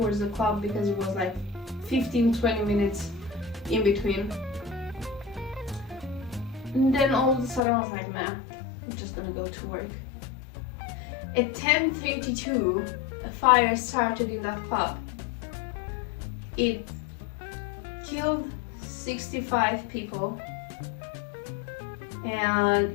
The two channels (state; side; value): drops out; right; at 7.6 s